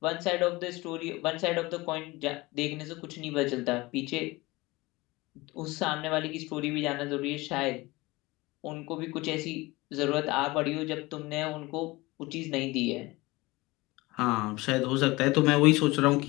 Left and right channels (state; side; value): quieter; right; 21.7 dB